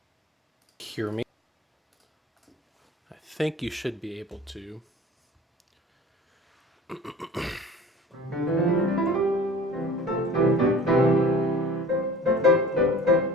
Hear me? I think you should be able to.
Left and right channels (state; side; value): normal; both; correlation 0.43